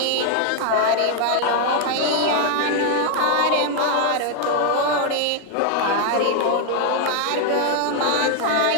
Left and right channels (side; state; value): both; different; correlation 0.00